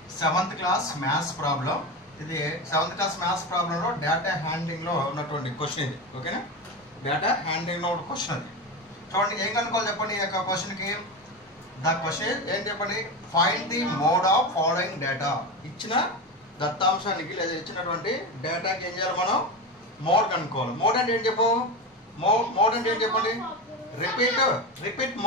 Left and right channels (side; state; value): both; normal; correlation 0.20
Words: 7th class maths problem. ఇది 7th క్లాస్ మ్యాథ్స్ ప్రాబ్లంలో డేటా హ్యాండ్లింగ్ లో ఉన్నటువంటి క్వశ్చన్ ఇది. ఓకేనా, డేటా హ్యాండ్లింగ్ లో ఉన్న క్వశ్చన్ అది. చూడండి ఏం కనుక్కోవాలి చెప్పండి. ఈ యొక్క క్వశ్చన్ కి ద క్వశ్చన్ ఏం చెప్పండి, find the mode of following data. ఇచ్చిన దత్తాంశానికి లేదా ఇచ్చినటువంటి డేటాకి ఏం చేయాలి మనం, మోడ్ కనుక్కోవాలి. మోడ్ అంటే ఏం చెప్పు, మోడ్ అంటే ఏం చెప్పండి, repeat